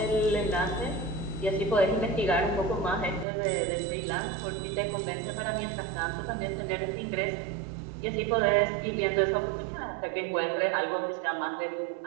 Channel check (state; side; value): drops out; left; at 3.2 s